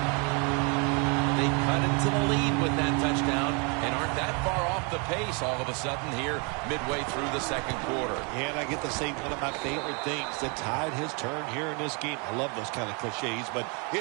They cut into the lead with that touchdown and aren't that far off the pace all of a sudden here midway through the 2nd quarter. Yeah, and I get to say one of my favorite things. The tide has turned here in this game. I love those kind of cliches, but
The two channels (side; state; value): left; quieter; 33.9 dB